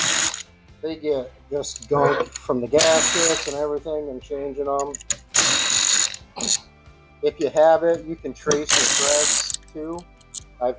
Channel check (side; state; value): both; identical; correlation 1.00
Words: They get just gunk from the gaskets and everything and changing them. If you have it, you can trace the threads too. I've